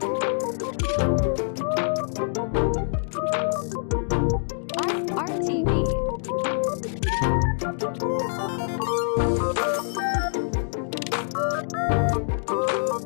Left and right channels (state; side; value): silent; right; digital silence